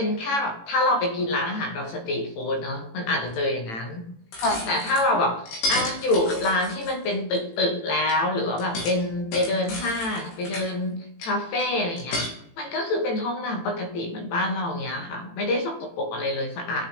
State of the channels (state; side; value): late; right; 18 ms